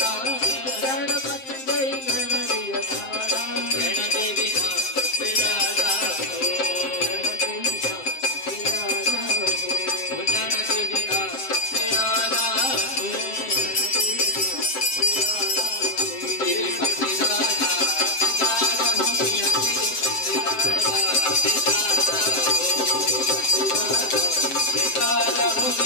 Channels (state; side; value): late; right; 7.6 ms